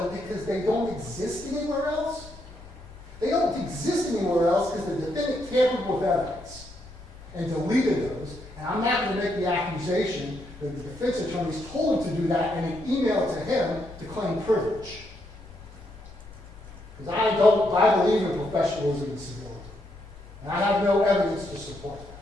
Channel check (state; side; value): normal; both; correlation 0.78